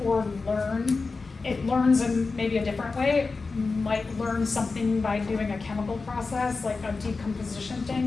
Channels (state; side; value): quieter; right; 4.1 dB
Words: or learn. It learns in maybe a different way. might learn something by doing a chemical process, like a decomposition